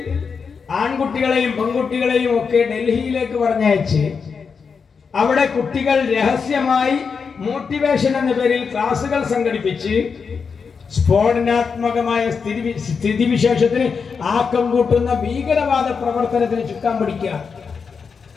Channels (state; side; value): quieter; right; 5.7 dB